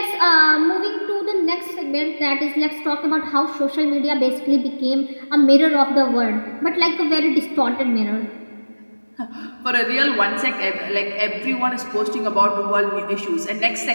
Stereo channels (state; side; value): inverted; both; correlation -1.00